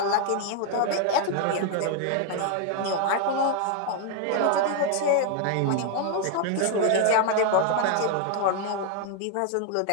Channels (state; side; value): different; both; correlation 0.00